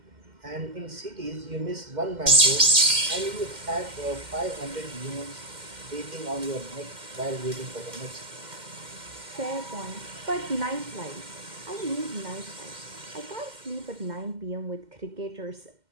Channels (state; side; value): late; left; 2.1 ms